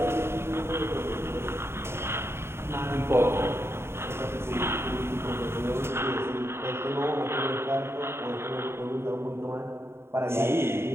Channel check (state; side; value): late; left; 0.12 ms